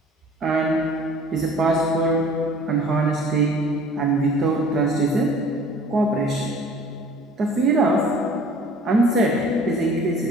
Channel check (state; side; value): normal; both; correlation 0.49